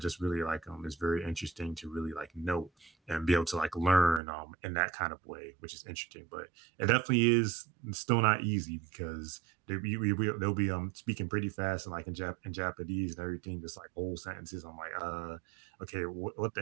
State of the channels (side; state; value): left; drops out; at 4.2 s